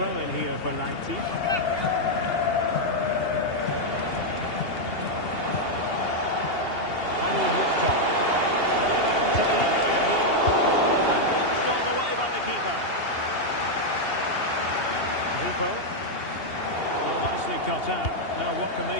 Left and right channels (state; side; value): late; right; 2.8 ms